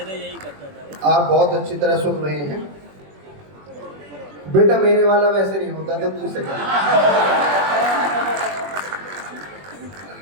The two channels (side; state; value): left; late; 21 ms